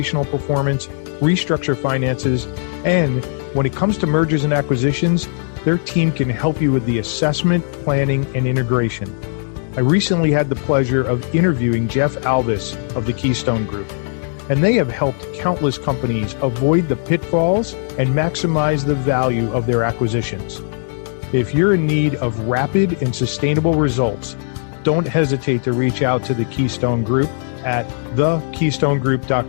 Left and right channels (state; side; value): silent; right; digital silence